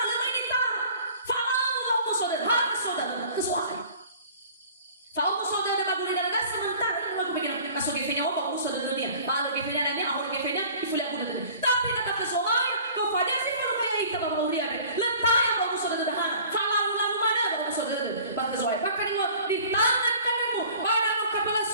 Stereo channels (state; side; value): inverted; both; correlation -0.47